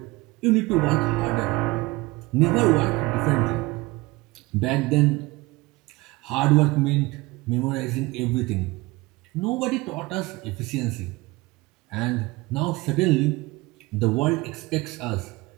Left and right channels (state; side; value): quieter; left; 21.7 dB